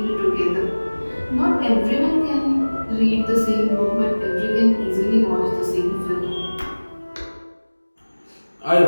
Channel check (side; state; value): both; inverted; correlation -1.00